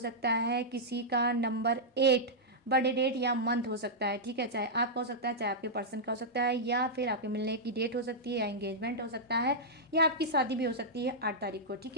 है, किसी का नंबर 8 बर्थडे डेट या मंथ हो सकता है। ठीक है, चाहे आपका हो सकता है, चाहे आपके पर्सन का हो सकता है, या फिर आपके मिलने की डेट हो सकती है, या एंगेजमेंट हो सकता है, या आपकी शादी भी हो सकती है 8 तारीख को। ठीक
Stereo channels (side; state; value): both; normal; correlation -0.08